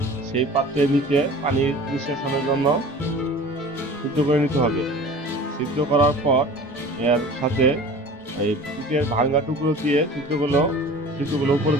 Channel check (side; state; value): both; normal; correlation 0.41